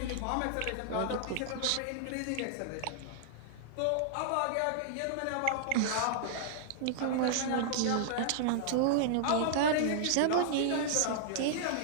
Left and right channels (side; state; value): both; different; correlation -0.01